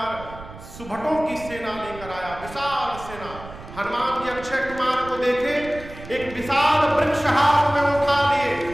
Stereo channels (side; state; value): right; noise; rumble, 15 dB below the sound